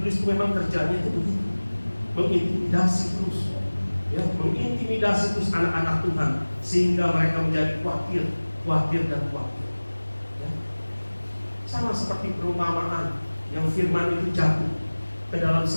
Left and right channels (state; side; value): inverted; both; correlation -1.00